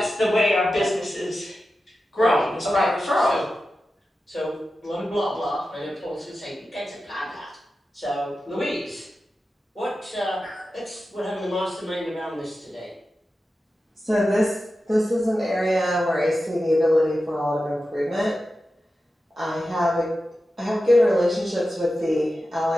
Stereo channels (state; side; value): normal; both; correlation 0.92